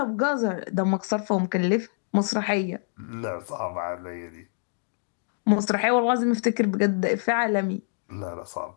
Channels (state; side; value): silent; right; digital silence